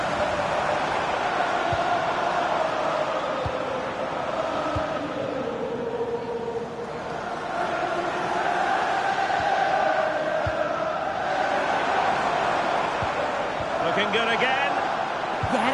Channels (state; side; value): identical; both; correlation 1.00